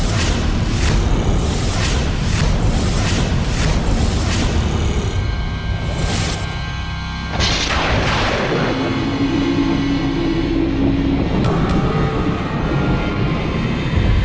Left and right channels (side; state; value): both; identical; correlation 1.00